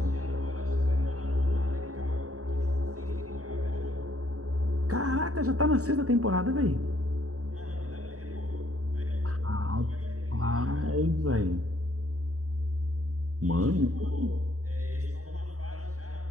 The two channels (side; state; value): left; late; 0.66 ms